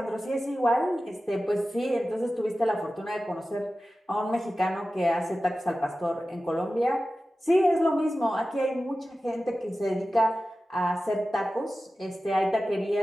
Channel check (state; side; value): normal; both; correlation 0.94